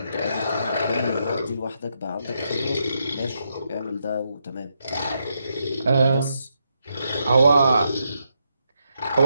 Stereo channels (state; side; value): inverted; both; correlation -0.81